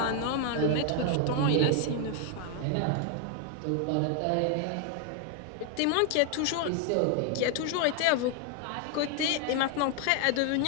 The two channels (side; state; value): both; different; correlation 0.01